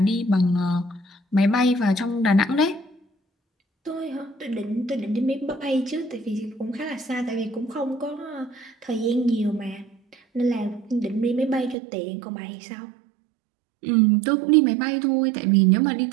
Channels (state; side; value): drops out; left; at 11.8 s